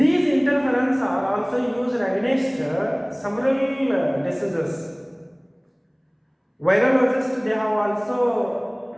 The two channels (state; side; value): identical; both; correlation 1.00